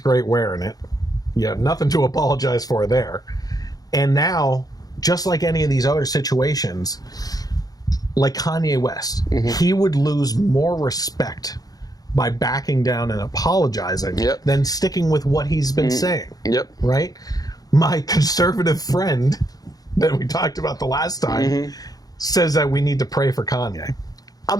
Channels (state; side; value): late; right; 0.18 ms